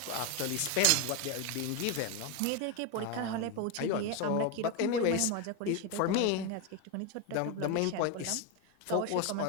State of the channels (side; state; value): both; different; correlation 0.02